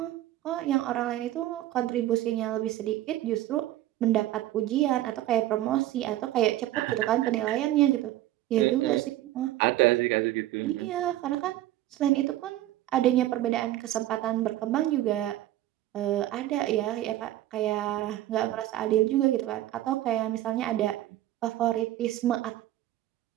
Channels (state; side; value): quieter; left; 14.4 dB